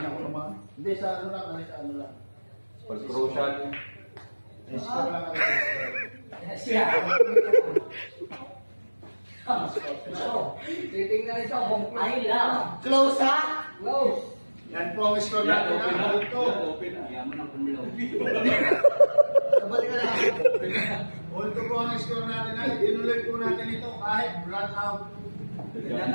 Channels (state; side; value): inverted; both; correlation -1.00